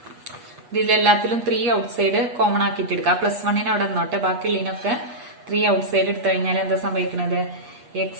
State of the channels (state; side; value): late; left; 8.3 ms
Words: ഇതിലെല്ലാത്തിലും 3 ഔട്ട്സൈഡ് കോമൺ ആക്കിയിട്ട് എടുക്കാം. പ്ലസ് 1 അവിടെ നിന്നോട്ടെ, ബാക്കിയുള്ളതിനൊക്കെ 3 ഔട്ട്സൈഡ് എടുത്തു കഴിഞ്ഞാൽ എന്താ സംഭവിക്കുന്നത്,